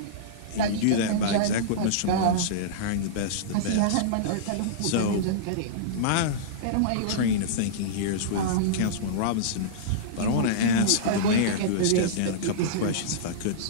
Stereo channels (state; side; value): different; both; correlation -0.04